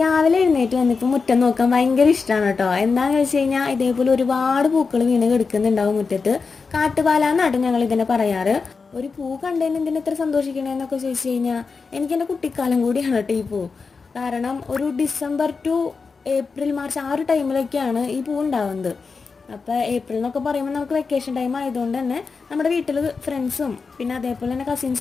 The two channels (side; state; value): right; quieter; 4.8 dB